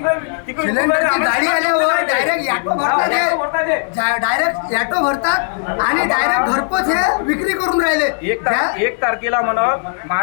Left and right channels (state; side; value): silent; right; 59 dB below the other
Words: तिकडे सिलेंडरची गाडी आल्यावर डायरेक्ट ॲटो भरतात, डायरेक्ट ॲटो भरतात आणि डायरेक्ट घरपोच हे विक्री करून राहिले. 1 तारखेला म्हणत